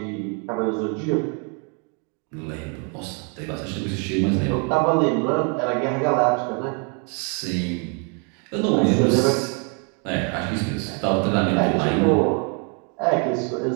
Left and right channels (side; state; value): left; quieter; 37.4 dB